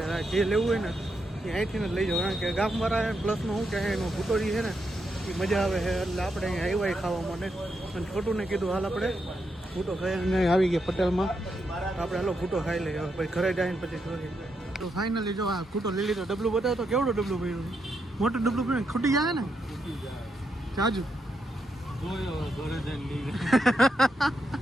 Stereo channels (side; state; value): both; normal; correlation 0.82